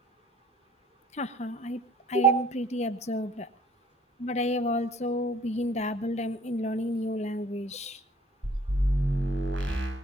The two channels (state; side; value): normal; both; correlation 0.55